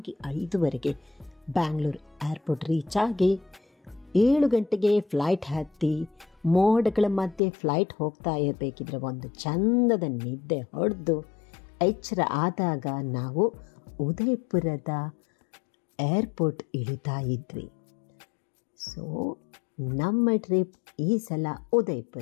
5:15 ಬ್ಯಾಂಗ್ಳೂರು ಏರ್ಪೋರ್ಟ್ ರೀಚ್ ಆಗಿ 7 ಗಂಟೆಗೆ ಫ್ಲೈಟ್ ಹತ್ತಿ ಮೋಡಗಳ ಮಧ್ಯೆ ಫ್ಲೈಟ್ ಹೋಗ್ತಾ ಇರಬೇಕಿದ್ರೆ ಒಂದು ಚಂದದ ನಿದ್ದೆ ಹೊಡೆದು ಎಚ್ಚರ ಆದಾಗ ನಾವು ಉದಯಪುರದ ಏರ್ಪೋರ್ಟ್ ಇಳಿತಾ ಇದ್ವಿ. ಸೊ ನಮ್ಮ ಟ್ರಿಪ್ ಈ ಸಲ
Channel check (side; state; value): right; drops out; at 7.4 s